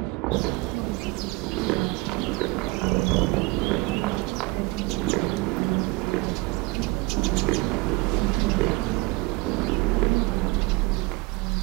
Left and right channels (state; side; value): quieter; left; 24.3 dB